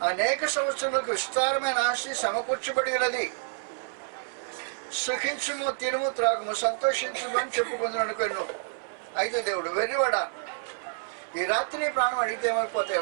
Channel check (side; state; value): left; silent; 59 dB below the other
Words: అనేక సంవత్సరాలకు విస్తారమైన ఆస్తి సమకూర్చబడినది, సుఖించుము, తినుము, త్రాగుము, సంతోషించుము అని చెప్పుకుందును అనుకున్నాను. అయితే దేవుడు, వెర్రివాడా, ఈ రాత్రి ప్రాణం అడిగితే ఏమైపోతాయి?